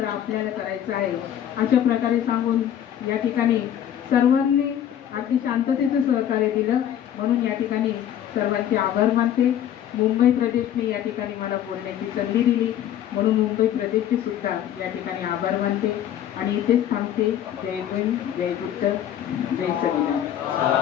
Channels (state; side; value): quieter; right; 10.6 dB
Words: आपल्याला करायचं आहे. अशा प्रकारे सांगून या ठिकाणी सर्वांनी अगदी शांततेचं सहकार्य दिलं म्हणून या ठिकाणी सर्वांचे आभार मानते. मुंबई प्रदेशने या ठिकाणी मला बोलण्याची संधी दिली म्हणून मुंबई प्रदेशचे सुद्धा या ठिकाणी आभार मानते आणि इथेच थांबते. जय भीम, जय बुद्ध, जय संविधान.